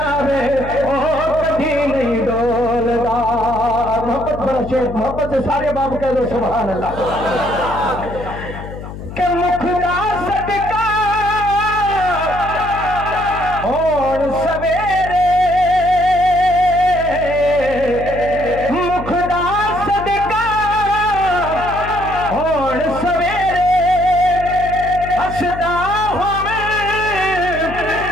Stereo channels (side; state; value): left; noise; hum, 11 dB below the sound